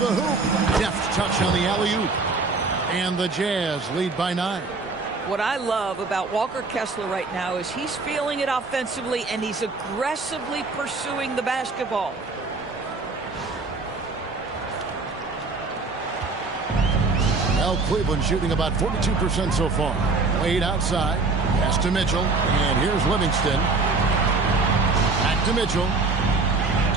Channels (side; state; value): left; quieter; 3.9 dB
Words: hoop. Deft touch on the alley-oop. And the Jazz lead by 9. What I love about Walker Kessler right now is he's feeling it offensively and he's aggressively pursuing the basketball. Well, Cleveland shooting about 42% so far. Wade outside. Pass to Mitchell. And here's Livingston. Back to Mitchell.